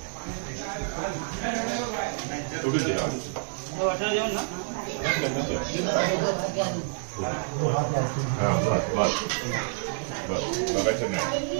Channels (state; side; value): silent; left; digital silence